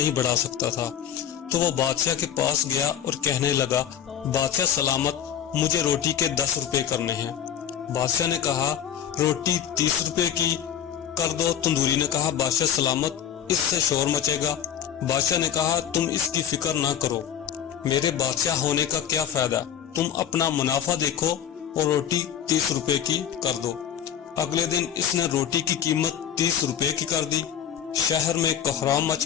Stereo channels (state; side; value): quieter; right; 9.3 dB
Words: بڑھا سکتا تھا۔ تو وہ بادشاہ کے پاس گیا اور کہنے لگا، بادشاہ سلامت، مجھے روٹی کے 10 روپے کرنے ہیں۔ بادشاہ نے کہا، روٹی 30 روپے کی کر دو۔ تندوری نے کہا، بادشاہ سلامت، اس سے شور مچے گا۔ بادشاہ نے کہا، تم اس کی فکر نہ کرو، میرے بادشاہ ہونے کا کیا فائدہ، تم اپنا منافع دیکھو اور روٹی 30 روپے کی کر دو۔ اگلے دن اس نے روٹی کی قیمت 30 روپے کی کر دی۔ شہر میں کوہرام مچ